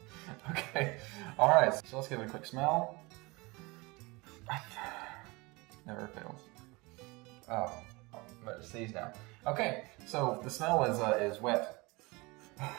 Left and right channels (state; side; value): quieter; left; 24.8 dB